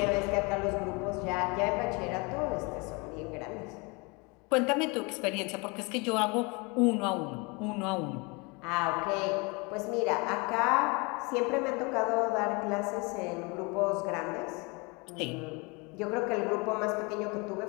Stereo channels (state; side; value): quieter; right; 28.6 dB